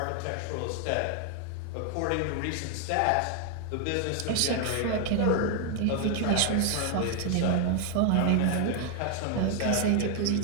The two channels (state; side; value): different; both; correlation 0.00